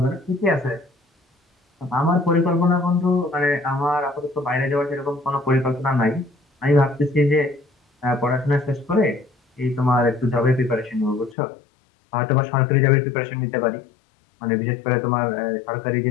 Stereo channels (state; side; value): drops out; right; at 11.4 s